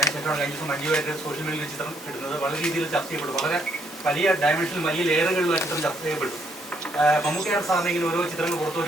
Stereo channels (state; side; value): normal; both; correlation 0.70